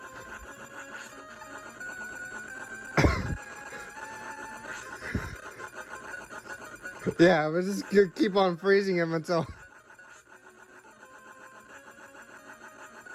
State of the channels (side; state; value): both; identical; correlation 1.00